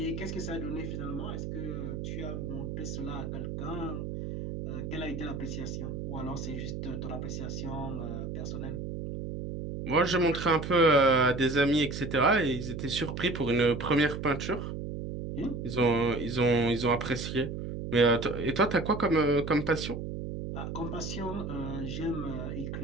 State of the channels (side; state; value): right; noise; hum, 6 dB below the sound